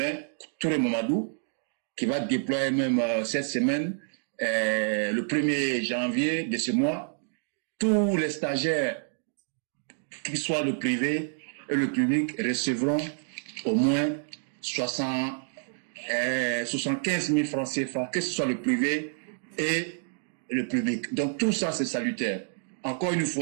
Touré Mamadou, qui va déployer même cette semaine, le 1er janvier de ce mois, tous les stagiaires, qu'ils soient le privé et le public, recevront au moins 75 000 francs CFA, que ce soit le privé et le public. Donc tout ça, c'est salutaire. Encore une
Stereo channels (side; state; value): left; silent; digital silence